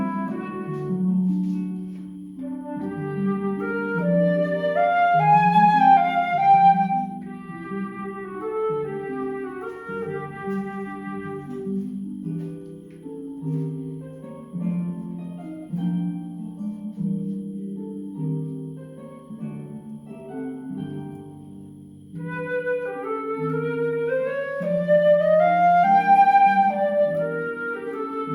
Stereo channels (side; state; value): both; identical; correlation 1.00